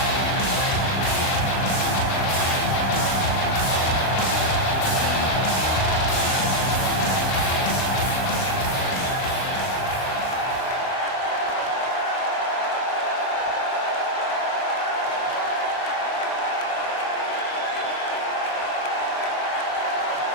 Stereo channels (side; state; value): right; late; 38 ms